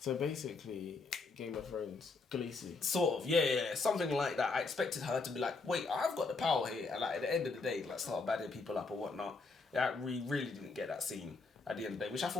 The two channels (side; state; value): right; quieter; 4.0 dB